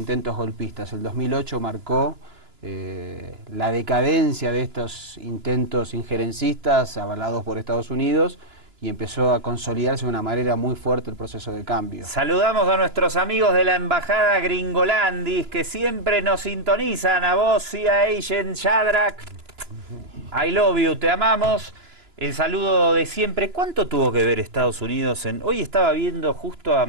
golpistas. El 2008 marcó la decadencia de estos intentos injerencistas avalados por Estados Unidos y empezó a consolidarse de una manera muy fuerte el proceso de cambio. Saludamos a nuestros amigos de la Embajada Gringolandis que siempre nos sintonizan. A vos, CIA Agent Shadrach. I love you, te amamos. El saludo de siempre. ¿Cuánto tuvo que ver Estados Unidos en...? Hoy estaba viendo justo a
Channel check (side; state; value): left; late; 2.9 ms